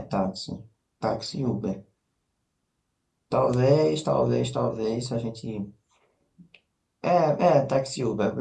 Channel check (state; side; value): identical; both; correlation 1.00